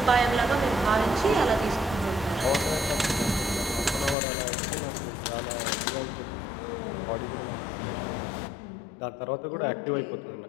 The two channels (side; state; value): right; drops out; at 4.2 s